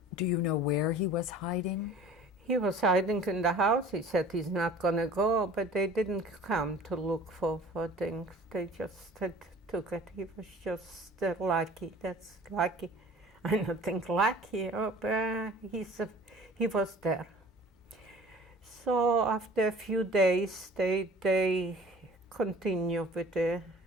Do you know where he was hiding? He was hiding in the house. He said he's not gonna go, but they didn't come to look for things. They just took it. He was just lucky. That's lucky. I don't think lucky, but he was there. So after a few days, they continue with the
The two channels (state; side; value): normal; both; correlation 0.47